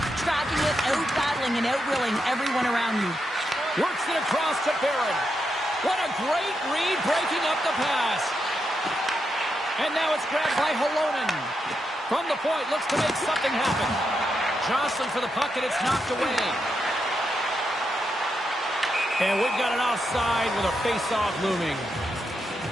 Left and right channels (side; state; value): both; normal; correlation 0.84